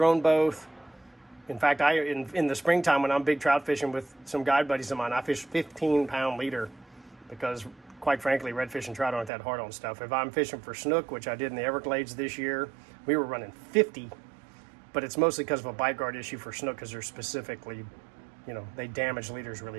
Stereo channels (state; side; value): drops out; left; at 9.3 s